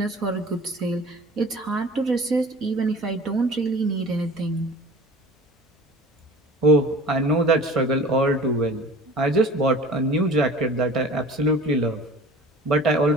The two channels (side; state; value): both; normal; correlation 0.42